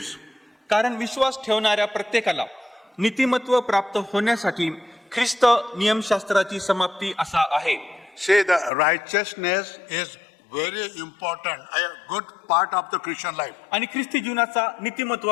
कारण विश्वास ठेवणाऱ्या प्रत्येकाला नीतिमत्व प्राप्त होण्यासाठी ख्रिस्त नियमशास्त्राची समाप्ती असा आहे. See, the righteousness is very important, a good part of the Christian life. आणि ख्रिस्ती जीवनाचा नीतिमत्व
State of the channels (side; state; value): right; drops out; at 8.7 s